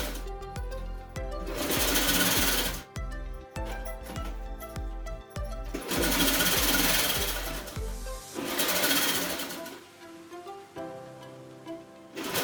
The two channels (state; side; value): identical; both; correlation 1.00